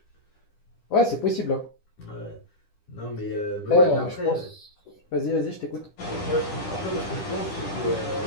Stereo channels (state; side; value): late; right; 10 ms